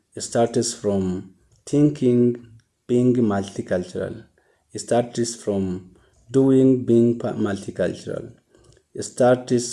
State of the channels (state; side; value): identical; both; correlation 1.00